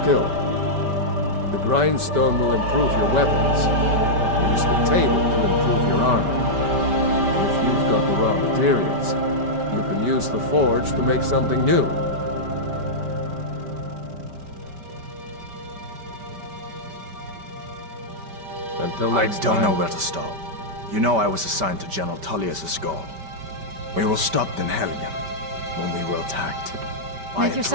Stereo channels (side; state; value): left; late; 5.1 ms